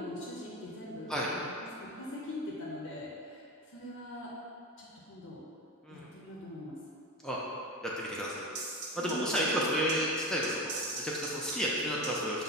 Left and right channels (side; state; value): both; normal; correlation 0.26